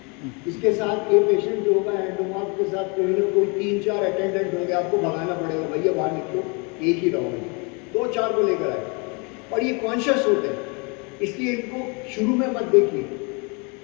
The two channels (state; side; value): quieter; right; 32.0 dB